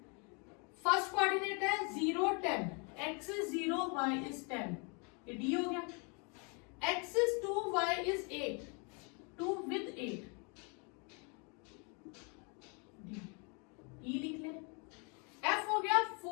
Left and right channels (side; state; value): right; quieter; 34.6 dB